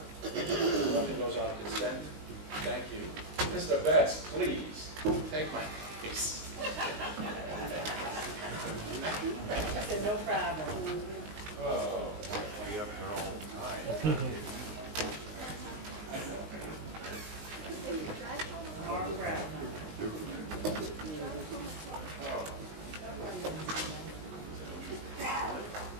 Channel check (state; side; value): late; left; 19 ms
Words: Nothing goes on consent. Thank you. Mr. Betts, please, take my case. I said, no problem. Oh. Be up there all the time. Mark Brown.